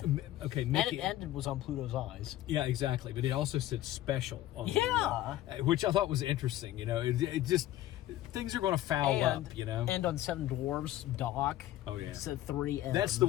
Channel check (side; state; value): right; quieter; 14.2 dB